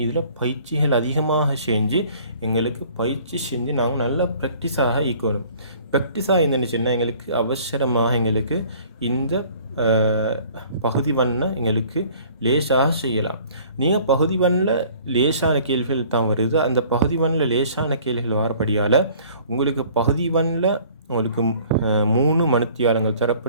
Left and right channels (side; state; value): both; inverted; correlation -0.53